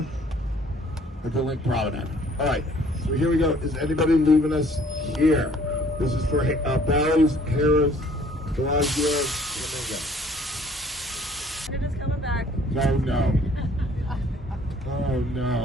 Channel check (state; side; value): normal; both; correlation 0.57